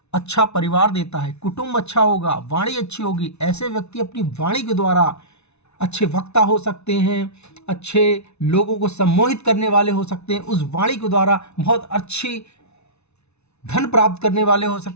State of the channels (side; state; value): right; late; 0.81 ms